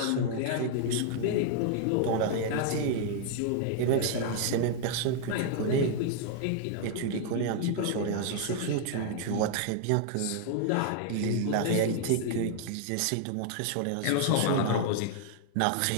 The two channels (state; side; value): different; both; correlation 0.00